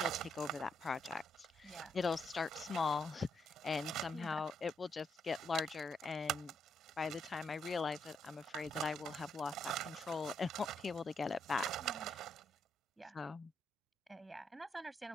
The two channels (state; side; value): normal; both; correlation 0.77